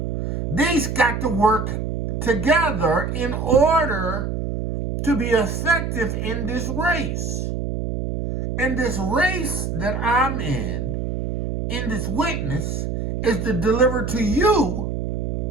These got to work together in order to be effective in this race. And this race that I'm in this witness, is to deliver to you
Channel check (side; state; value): right; noise; hum, 2 dB below the sound